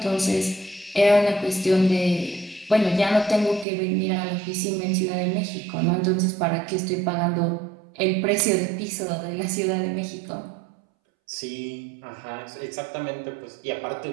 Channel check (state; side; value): drops out; left; at 3.7 s